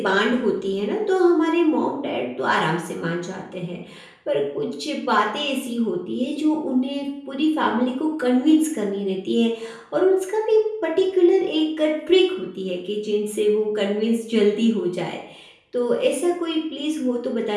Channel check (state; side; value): identical; both; correlation 1.00